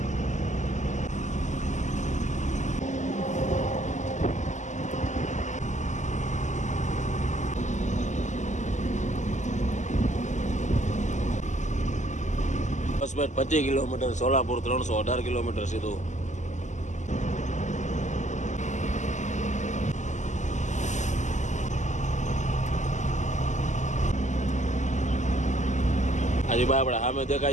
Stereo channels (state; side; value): late; right; 0.34 ms